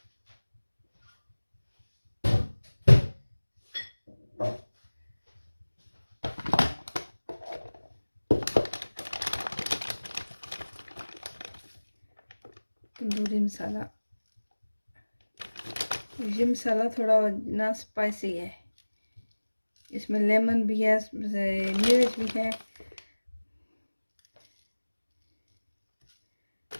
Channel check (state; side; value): inverted; both; correlation -1.00